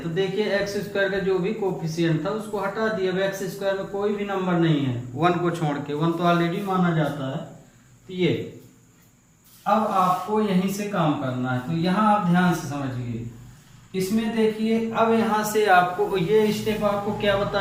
देखिए एक्स स्क्वायर का जो भी कोफिशिएंट था उसको हटा दिया। अब एक्स स्क्वायर में कोई भी नंबर नहीं है 1 को छोड़ के, 1 तो ऑलरेडी माना जाता है। तो ये अब आपको यहीं से काम करना है, तो यहाँ आप ध्यान से समझिए। इसमें देखिए, अब यहाँ से आपको ये स्टेप आपको क्या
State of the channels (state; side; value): identical; both; correlation 1.00